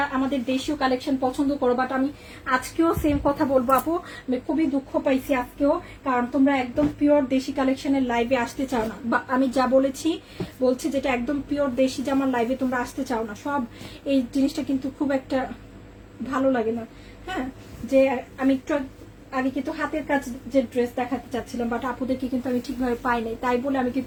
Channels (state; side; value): identical; both; correlation 1.00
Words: আমাদের দেশীয় কালেকশন পছন্দ করো, বাট আমি আজকেও সেম কথা বলবো আপু, আমি খুবই দুঃখ পাইছি আজকেও, কারণ তোমরা একদম পিওর দেশি কালেকশনের লাইভে আসতে চাও না, বা আমি যা বলছি যেটা একদম পিওর দেশি জামার লাইভে তোমরা আসতে চাও না। সব এই জিনিসটা কিন্তু খুব একটা ভালো লাগে না। হ্যাঁ, যে আমি একটু আগে কিন্তু হাতের কাজ যে ড্রেস দেখাতে চাচ্ছিলাম, বাট আপুদেরকে কিন্তু আমি ঠিকভাবে পাই নাই, তাই বলে আমি